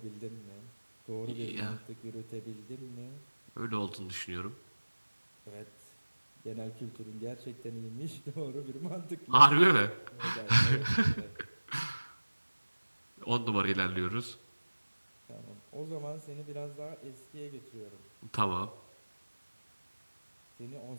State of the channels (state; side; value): inverted; both; correlation -1.00